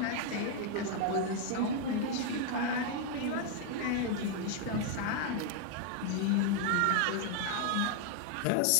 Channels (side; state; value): both; different; correlation 0.00